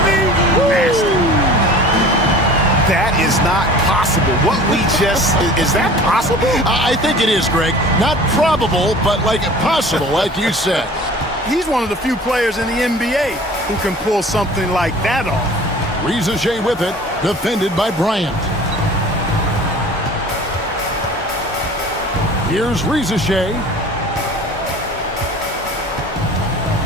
me? Nasty. That is not possible. What we just, is that possible? I think it is, Greg. Not probable, but like possible, like you said. He's one of the few players in the NBA who can pull something like that off. Riza with it, defended by Bryant. Here's Riza.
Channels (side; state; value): both; normal; correlation 0.44